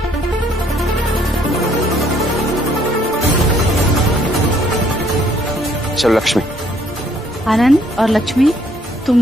चलो लक्ष्मी। आनंद और लक्ष्मी,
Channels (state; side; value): normal; both; correlation 0.65